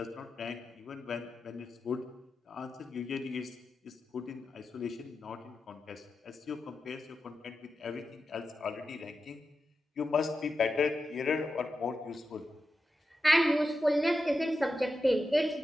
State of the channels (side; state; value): both; normal; correlation 0.90